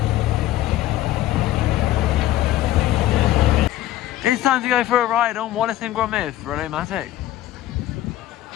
It's time to go for a ride on Wildest and Rollercoasters.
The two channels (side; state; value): right; quieter; 14.2 dB